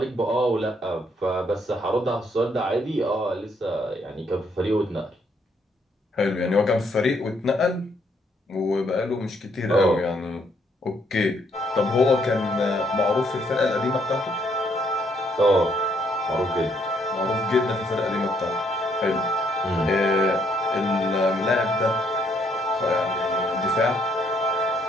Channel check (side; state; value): both; normal; correlation 0.70